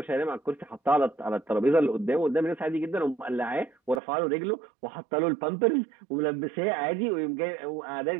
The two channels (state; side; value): drops out; left; at 4.0 s